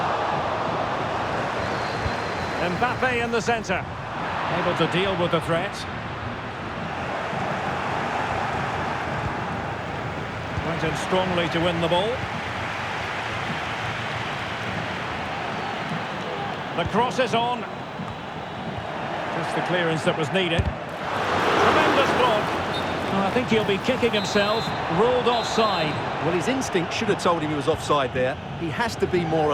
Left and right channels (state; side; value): identical; both; correlation 1.00